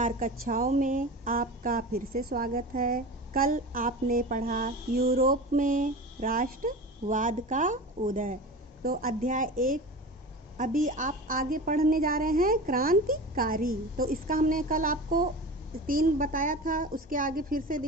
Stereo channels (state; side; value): normal; both; correlation 0.31